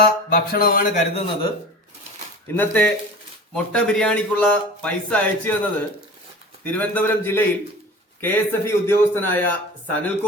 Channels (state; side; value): normal; both; correlation 0.38